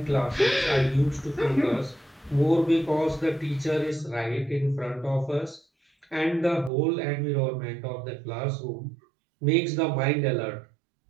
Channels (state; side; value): drops out; left; at 6.7 s